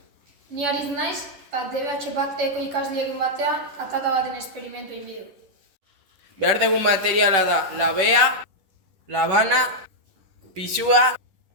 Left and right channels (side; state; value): left; late; 11 ms